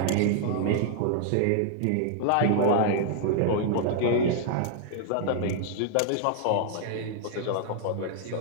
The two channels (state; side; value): different; both; correlation -0.01